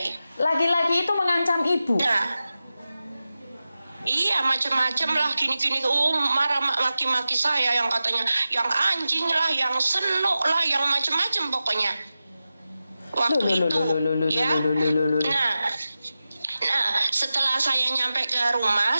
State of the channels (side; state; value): both; inverted; correlation -0.93